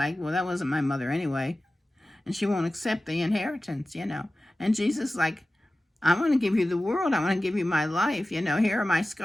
well, that wasn't my mother anyway, and she won't accept the inheritance, And Jesus, like, I want to give you the world. I want to give you my life. Here are my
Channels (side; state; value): both; normal; correlation 0.96